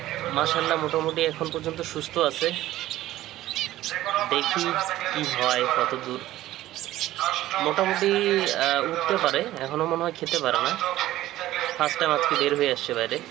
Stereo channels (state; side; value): quieter; left; 14.9 dB